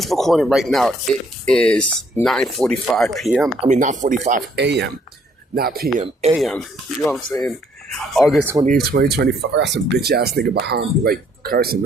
recording right now, it is 9:45 p.m. 9:45 a.m. Not p.m. a.m. You know what I'm saying? August 28th, 2025. I got some bitch ass nigga behind me, like cursing.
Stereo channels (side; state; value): both; normal; correlation 0.66